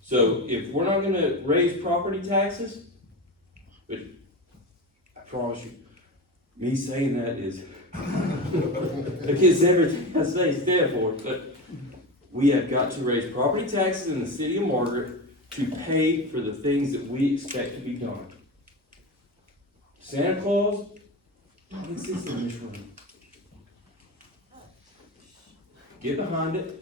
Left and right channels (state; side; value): normal; both; correlation 0.23